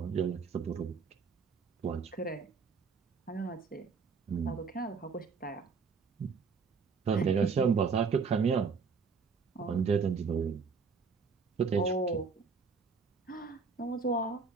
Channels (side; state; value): left; quieter; 5.2 dB